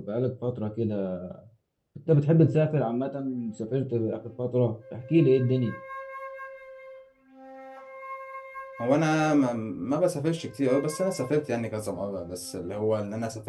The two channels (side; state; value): both; identical; correlation 1.00